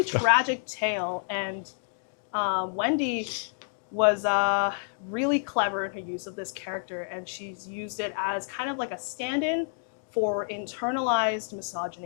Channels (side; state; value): right; silent; digital silence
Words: tragic tale, and Wendy was really clever in her use of this character, and she's used it as kind of like a stand-in for internalized